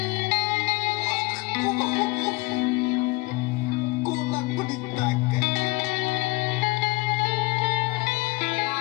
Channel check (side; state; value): right; quieter; 23.5 dB